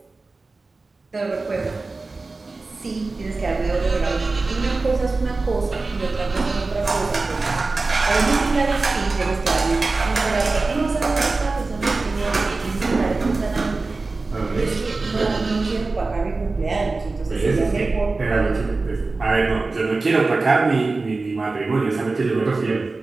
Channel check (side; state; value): left; quieter; 3.6 dB